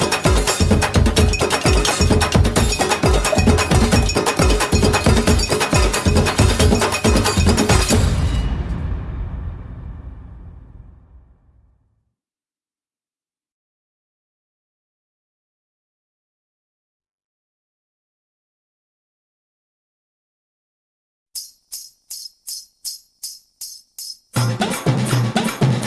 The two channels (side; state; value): both; identical; correlation 1.00